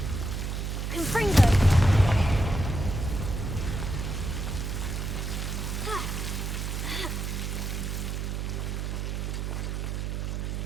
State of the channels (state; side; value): noise; right; hum, 2 dB below the sound